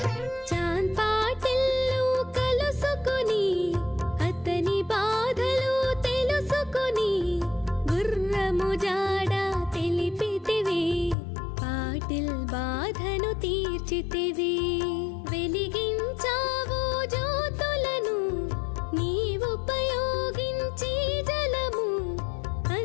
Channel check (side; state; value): right; drops out; at 11.2 s